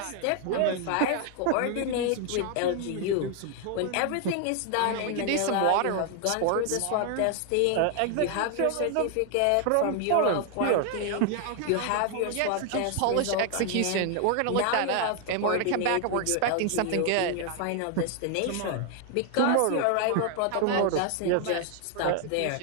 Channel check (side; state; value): both; different; correlation 0.00